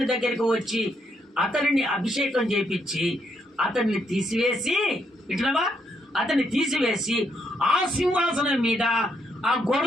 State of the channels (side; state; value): both; normal; correlation 0.76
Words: దగ్గరికి వచ్చి అతనిని అభిషేకం చేపించి అతన్ని తీసివేసి అతన్ని తీసివేసి ఆ సింహాసనం మీద ఆ